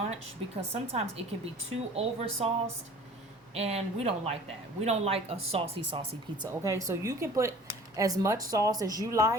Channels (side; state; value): both; normal; correlation 0.47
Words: because sometimes it can be too over sauced, and we don't like that. We don't like a saucy pizza, okay? So you can put as much sauce as you